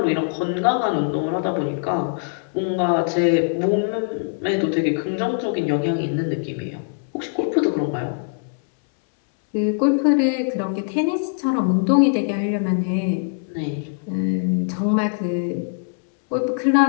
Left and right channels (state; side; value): silent; right; 64 dB below the other